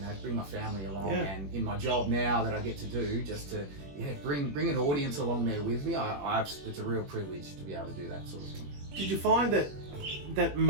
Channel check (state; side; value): late; left; 21 ms